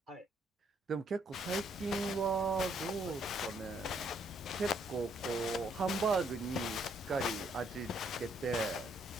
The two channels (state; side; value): normal; both; correlation 0.70